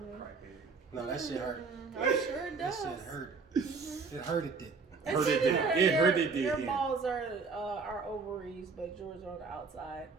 No, that shit hurt. I'm sure it That does. shit hurt. It hurted it. Hurt it did. It hurt it did. Your Yeah. balls are ovaries, but yours are on the outside.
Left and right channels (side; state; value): left; quieter; 4.7 dB